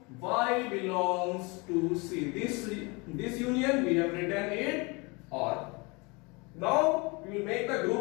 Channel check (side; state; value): right; quieter; 27.8 dB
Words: Y belongs to C. This union we have written it or. Now we will make the